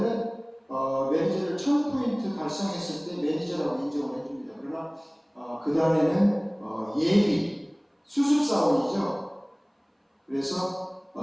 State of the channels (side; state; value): both; identical; correlation 1.00